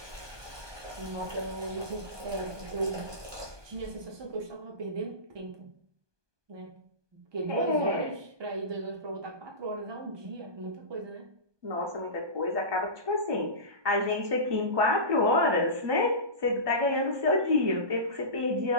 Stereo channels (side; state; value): left; late; 1.2 ms